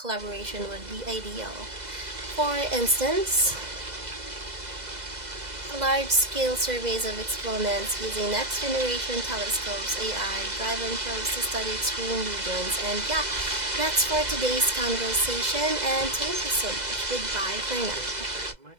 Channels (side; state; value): left; late; 2.0 ms